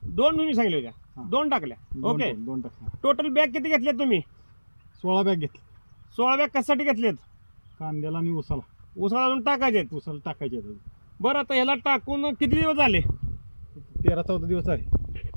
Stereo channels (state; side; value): inverted; both; correlation -1.00